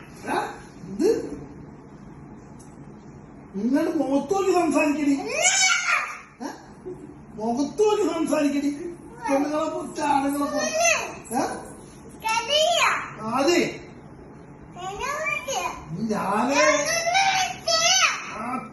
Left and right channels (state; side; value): identical; both; correlation 1.00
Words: ഇത് നിങ്ങളുടെ മുഖത്തോക്ക് സംസാരിക്കടി, മുഖത്തോക്ക് സംസാരിക്കടി. പെണ്ണുങ്ങളെ കുറിച്ച് ആണുങ്ങളെ കുറിച്ച് അതെ ഞാന്